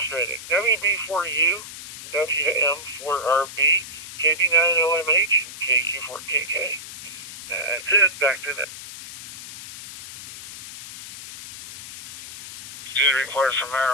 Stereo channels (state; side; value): noise; left; hiss, 13 dB below the sound